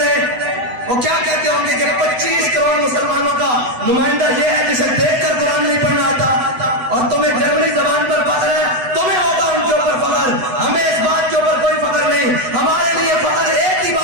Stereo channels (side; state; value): left; late; 8.0 ms